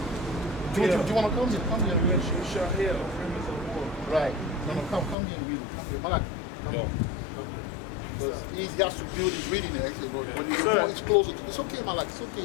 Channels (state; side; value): drops out; right; at 5.2 s